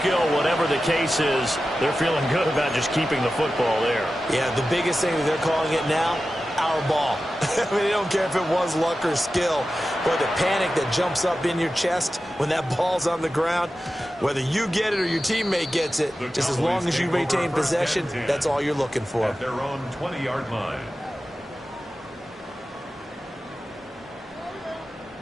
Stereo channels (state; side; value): normal; both; correlation 0.93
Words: whatever the case is, they're feeling good about just keeping the football there. Yeah, the biggest thing that they're calling it now, our ball. I mean, they don't care if it was luck or skill. But the panic that jumps up in your chest when that ball's on the ground, whether you get it or your teammate gets it, just as long as you retain possession, that's all you're looking for. At their own 20-yard line.